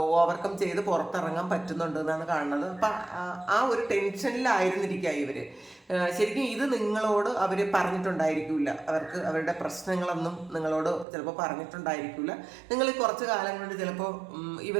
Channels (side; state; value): left; drops out; at 11.1 s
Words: ഓവർകം ചെയ്ത് പുറത്തിറങ്ങാൻ പറ്റുന്നുണ്ട് എന്നാണ് കാണുന്നത്. അപ്പം ആ ഒരു ടെൻഷനിലായിരുന്നിരിക്കുക ഇവർ. ശരിക്കും ഇത് നിങ്ങളോട് അവർ പറഞ്ഞിട്ടുണ്ടായിരിക്കില്ല, അവരുടെ പ്രശ്നങ്ങളൊന്നും നിങ്ങളോട് ചിലപ്പോൾ പറഞ്ഞിട്ടുണ്ടായിരിക്കില്ല. നിങ്ങൾ കുറച്ച് കാലം കൊണ്ട് ചിലപ്പോൾ